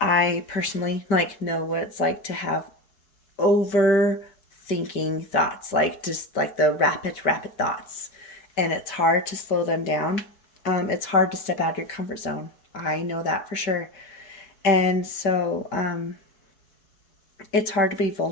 I personally like know what it's like to have overthinking thoughts, like just like the rapid thoughts, and it's hard to slow them down. It's hard to step out of your comfort zone. I know that for sure. And so it's hard to be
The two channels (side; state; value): right; late; 5.1 ms